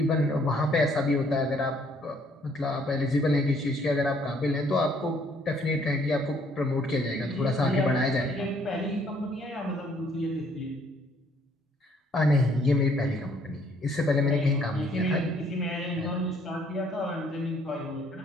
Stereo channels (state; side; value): normal; both; correlation 0.64